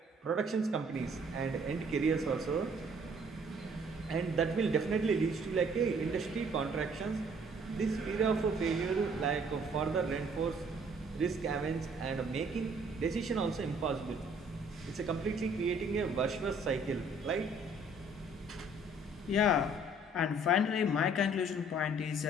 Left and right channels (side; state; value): both; normal; correlation 0.59